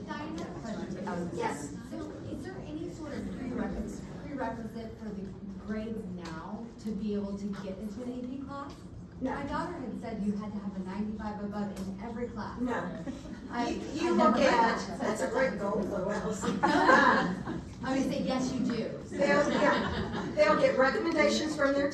Diane, I have a question. Yes. So is there any sort of prerequisite for the grades now to be able to get into an AP class? No. My daughter had said you had to have a 95 above in every class. No. I You never look heard at, that. that's a great goal, Lois. I'm gonna say, yes, you do. They'll get recommendations from their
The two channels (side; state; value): both; identical; correlation 1.00